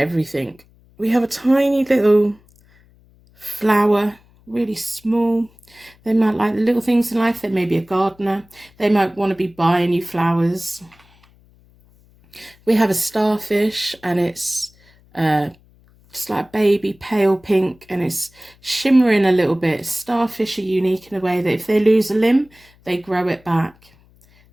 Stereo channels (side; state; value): left; noise; hum, 30 dB below the sound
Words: We have a tiny little flower, really small. They might like the little things in life. They may be a gardener. They might want to be buying you flowers. We have a starfish, and it's just like baby pale pink, and it's shimmering a little bit. Starfish are unique in a way that if they lose a limb, they grow it back.